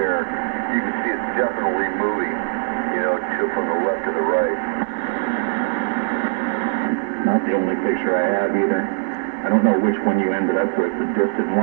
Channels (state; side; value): silent; left; digital silence